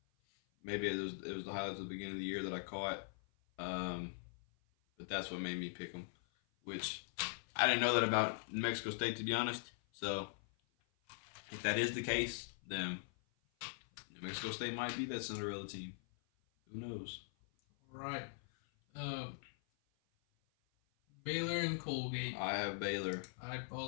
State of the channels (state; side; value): silent; right; 50 dB below the other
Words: Maybe it was the highlights at the beginning of the year that I caught, but that's what made me pick them. Which I didn't know that about New Mexico State, to be honest. So if that is the case, then New Mexico State might be that Cinderella team. Who knows? Right. Baylor and Colgate. I have Baylor. I